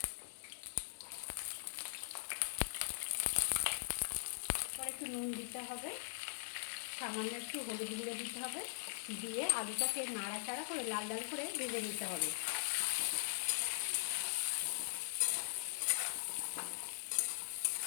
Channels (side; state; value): right; silent; digital silence